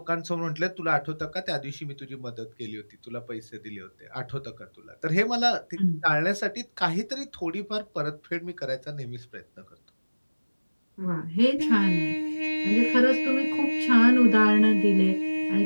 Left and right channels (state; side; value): inverted; both; correlation -1.00